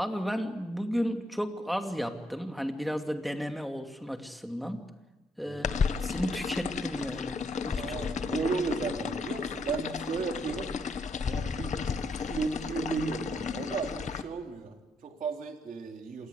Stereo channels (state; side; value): normal; both; correlation 0.75